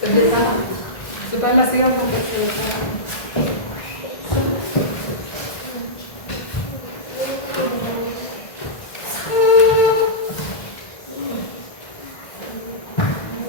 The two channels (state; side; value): late; right; 1.6 ms